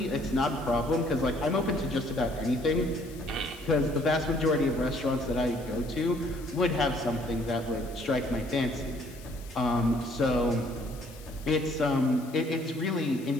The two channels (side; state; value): left; noise; hiss, 21 dB below the sound